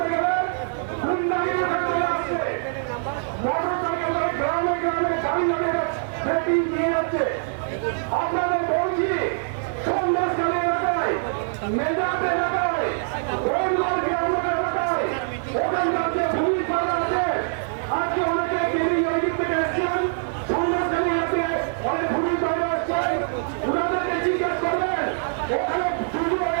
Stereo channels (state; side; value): silent; left; 63 dB below the other